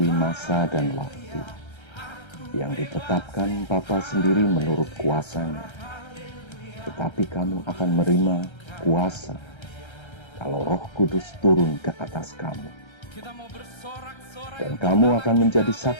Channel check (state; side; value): late; right; 1.3 ms